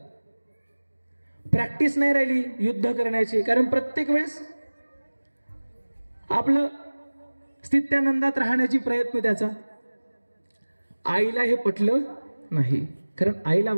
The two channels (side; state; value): both; inverted; correlation -1.00